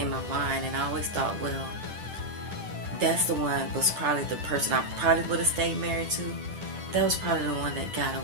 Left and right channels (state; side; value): late; left; 10 ms